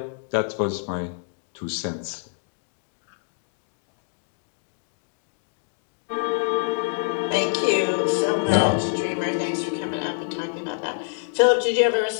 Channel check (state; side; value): silent; right; digital silence